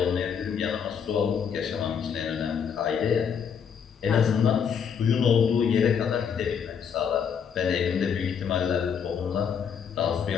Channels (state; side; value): quieter; right; 7.2 dB